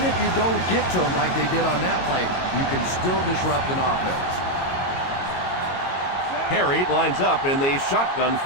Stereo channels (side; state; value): right; late; 22 ms